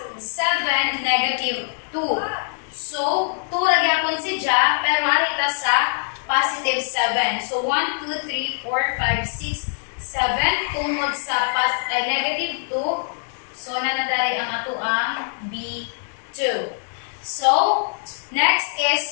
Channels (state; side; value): silent; right; digital silence